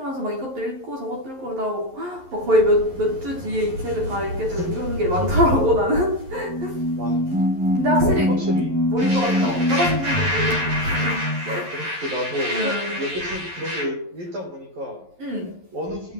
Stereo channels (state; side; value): late; left; 11 ms